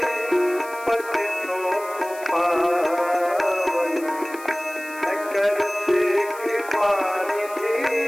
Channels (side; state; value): left; noise; hiss, 18 dB below the sound